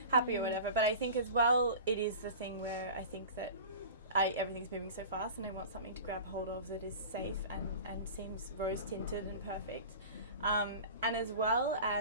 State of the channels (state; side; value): inverted; both; correlation -0.35